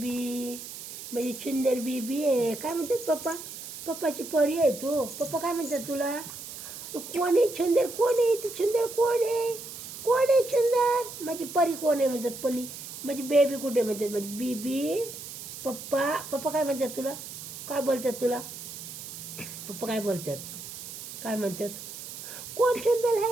माझी सुंदर बेबी आहे. काय म्हणतात पप्पा? पप्पाची परी आहे तू. पप्पा काय म्हणतात तुला? तू कोण आहे सुंदर? कोण आहे तू? सुंदर कोण आहे? कोण आहे सुंदर? माझी परी कोण आहे म्हणतात? परी. माझी बेबी कुठे म्हणतात? माझी बेबी. पप्पा पप्पा काय म्हणतात तुला? काय बोलतात तुला? पप्पा काय बोलतात? काय म्हणतात? कोण सुंदर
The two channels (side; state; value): right; noise; hiss, 11 dB below the sound